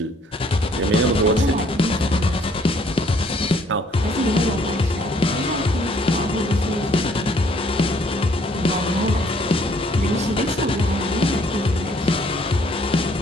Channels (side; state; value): both; normal; correlation 0.63